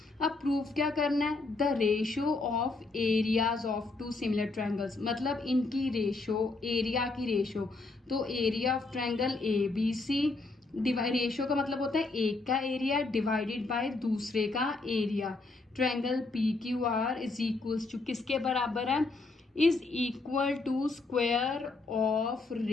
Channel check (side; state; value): right; quieter; 3.5 dB